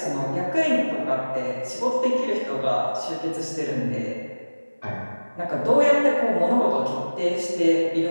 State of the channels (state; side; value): inverted; both; correlation -1.00